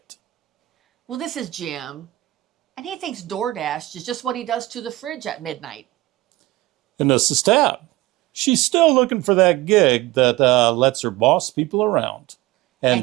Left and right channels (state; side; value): quieter; left; 18.3 dB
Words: Well, this is Jim, and he thinks DoorDash is just what he does to the fridge at midnight. And this is Tab. She's still looking for that gig that lets her boss people around.